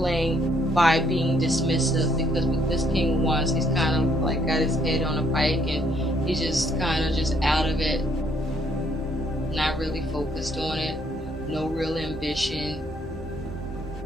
by being dismissive, because with this King of Wands, he's kind of like got his head on a pike and he's just kind of just out of it, not really focused on it, no real ambition,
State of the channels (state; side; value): normal; both; correlation 0.68